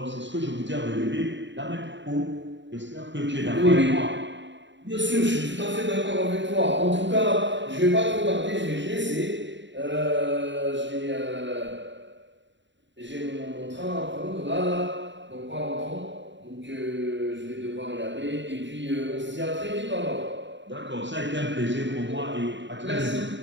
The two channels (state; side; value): late; left; 0.53 ms